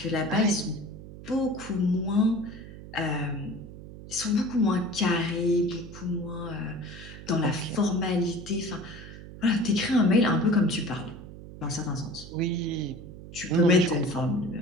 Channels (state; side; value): noise; right; hum, 14 dB below the sound